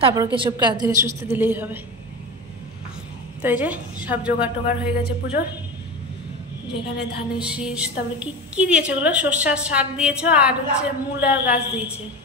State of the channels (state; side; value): normal; both; correlation 0.25